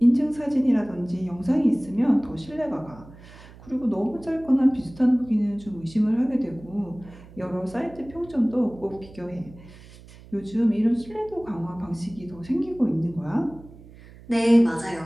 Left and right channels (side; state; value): right; noise; hum, 20 dB below the sound